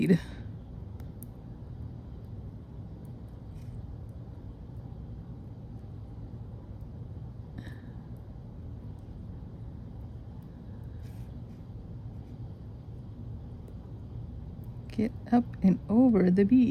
Get up and over the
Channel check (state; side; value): identical; both; correlation 1.00